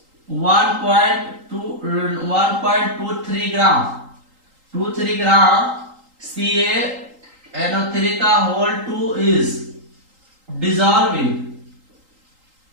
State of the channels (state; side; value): late; left; 3.8 ms